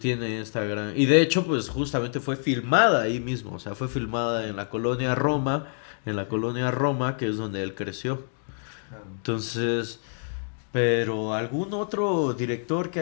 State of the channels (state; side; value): silent; right; digital silence